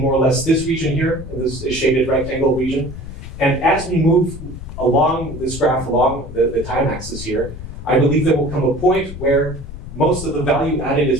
more or less this region here, this shaded rectangle region, and as we move along this graph, along the time axis here, I believe there will come a point where most of the value added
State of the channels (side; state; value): left; noise; rumble, 11 dB below the sound